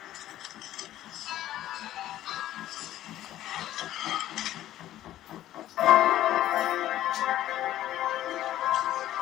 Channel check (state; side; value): quieter; right; 13.5 dB